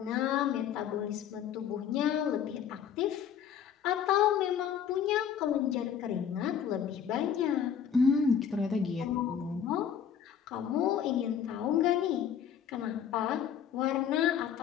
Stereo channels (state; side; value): quieter; right; 8.4 dB